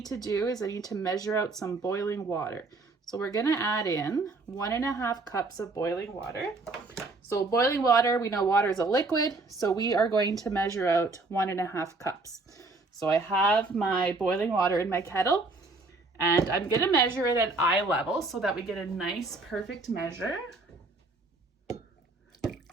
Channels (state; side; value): quieter; left; 3.4 dB